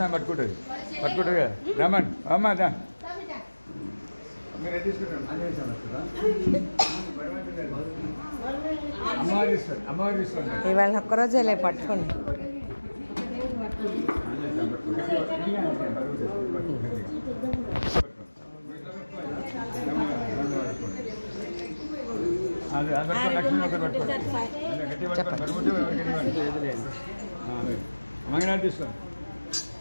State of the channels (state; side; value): inverted; both; correlation -1.00